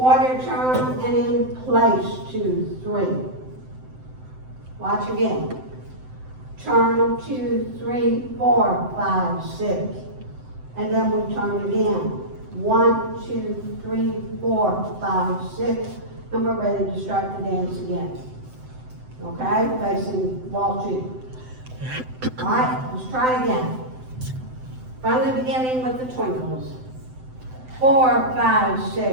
turn and in place, 2, 3. Watch again. Turn, 2, 3, 4, 5, 6. And then we turn again. 1, 2, 3, 4, 5, 6. And we're ready to start the dance again. Okay, facing wall 2. All right, let's try again. From the beginning with the twinkles. 4, 5,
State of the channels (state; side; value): late; left; 7.8 ms